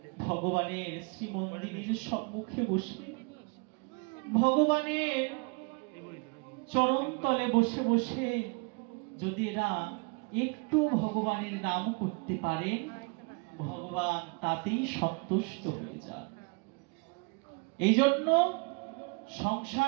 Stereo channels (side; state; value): left; quieter; 31.2 dB